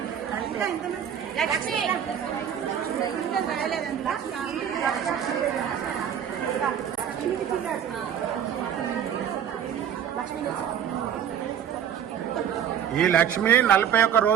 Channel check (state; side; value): quieter; left; 9.0 dB